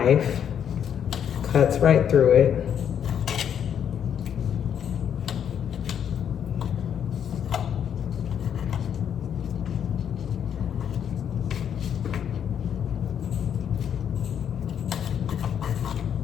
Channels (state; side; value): quieter; right; 8.7 dB